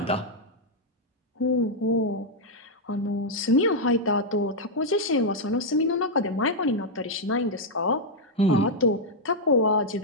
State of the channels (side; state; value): both; normal; correlation -0.03